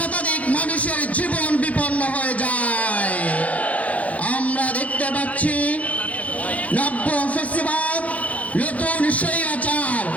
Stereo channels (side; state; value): right; late; 0.068 ms